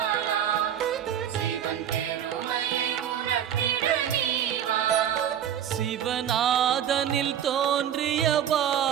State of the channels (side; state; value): left; quieter; 9.7 dB